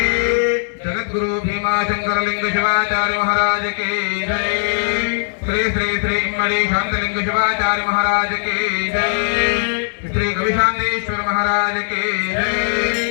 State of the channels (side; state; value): right; silent; digital silence